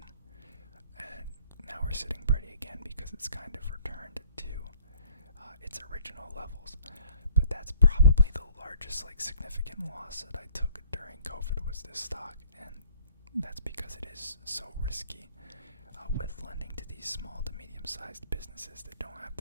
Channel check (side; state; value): both; inverted; correlation -0.58